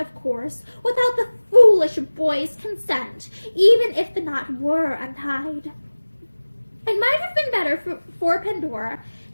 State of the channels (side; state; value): both; inverted; correlation -1.00